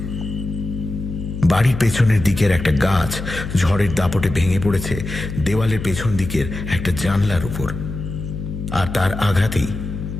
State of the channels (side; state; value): left; noise; hum, 7 dB below the sound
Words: বাড়ির পেছনের দিকের একটা গাছ ঝড়ের দাপটে ভেঙে পড়েছে দেওয়ালের পেছন দিকের একটা জানলার উপর, আর তার আঘাতেই